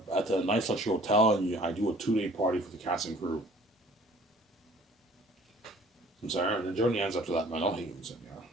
the Nice Luxury Hotel, and I do a 2-day party for the cast and crew. I'm sorry, and the journey ends after that, man. I'll hate you, yeah.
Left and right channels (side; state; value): both; normal; correlation 0.53